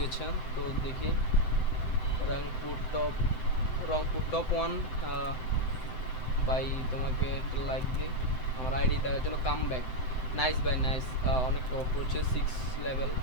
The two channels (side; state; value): right; late; 7.8 ms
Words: তো দেখি Rangpur top Rangpur top 1 bye, তোমাকে একটা লাইক দিই আমার আইডি দেখার জন্য। Come back, nice bye nice, অনেক টপ করছে 6 লেভেল।